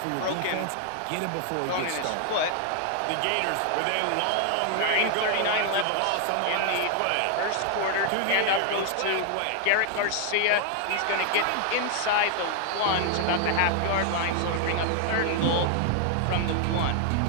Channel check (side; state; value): both; different; correlation 0.00